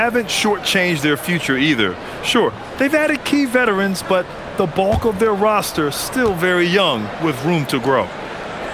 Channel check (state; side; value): identical; both; correlation 1.00